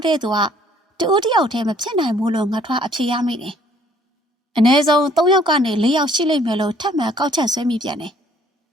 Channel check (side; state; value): both; normal; correlation 0.60